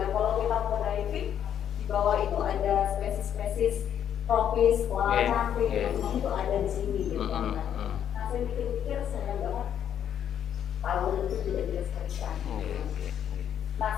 kita mau diving, di bawah itu ada spesies-spesies tropis, koala cantik, itu ada di sini gitu. Nah saya pikir-pikir sayang banget tahun itu tidak dilestarikan. Nah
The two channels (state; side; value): quieter; right; 9.5 dB